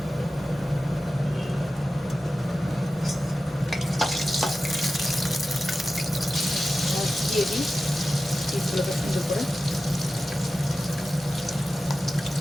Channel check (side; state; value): both; normal; correlation 0.94